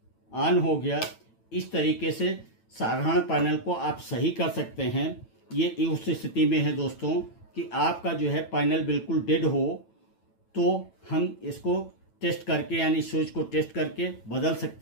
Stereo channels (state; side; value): late; right; 9.0 ms